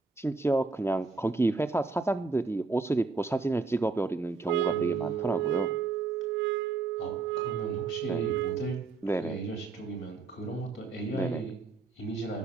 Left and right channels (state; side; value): quieter; left; 4.1 dB